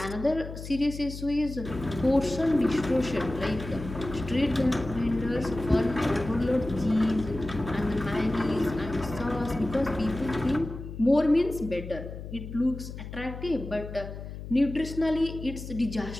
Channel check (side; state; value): left; noise; hum, 10 dB below the sound